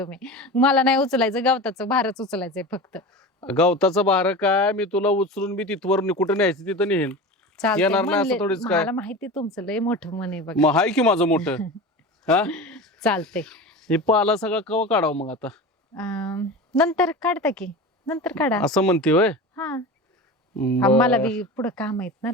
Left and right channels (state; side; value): normal; both; correlation 0.30